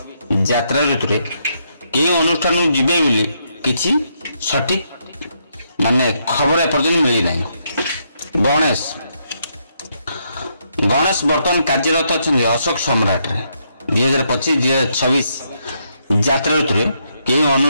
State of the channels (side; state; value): both; inverted; correlation -0.77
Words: यात्रा ऋतु रे केउ अनुष्ठान को जिबे बोली किछि सठिक माने खबर एपर्यंत मिली नै। गणेश वर्तमान कार्यरत अछंती अशोक सम्राट रे। 2025-2026 यात्रा ऋतु रे केउ